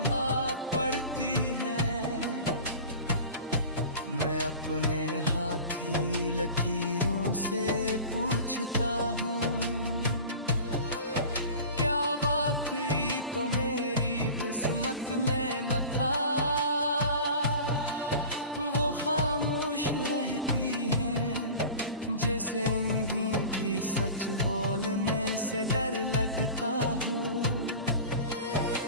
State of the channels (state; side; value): inverted; both; correlation -0.37